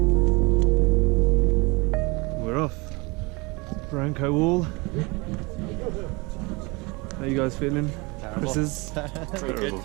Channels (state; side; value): quieter; left; 26.6 dB